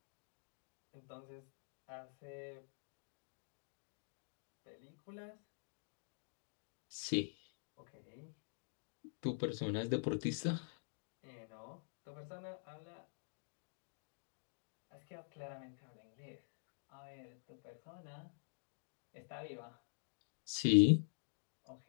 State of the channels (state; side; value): silent; right; digital silence